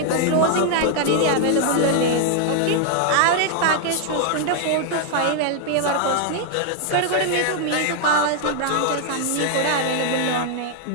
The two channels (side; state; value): both; different; correlation 0.00